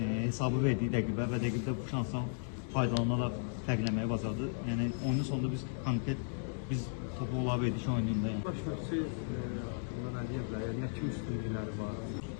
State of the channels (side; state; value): right; silent; digital silence